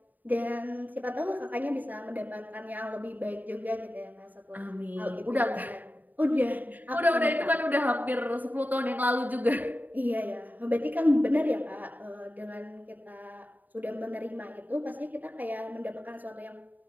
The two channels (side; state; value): left; late; 0.084 ms